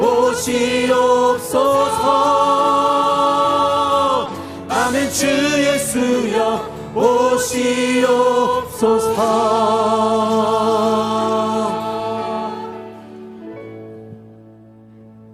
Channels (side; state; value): both; identical; correlation 1.00